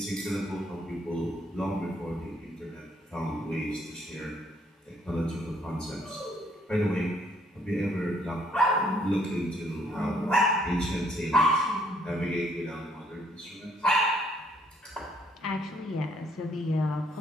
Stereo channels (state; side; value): normal; both; correlation 0.66